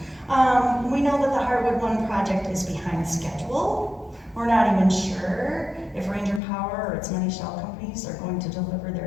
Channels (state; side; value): drops out; right; at 6.4 s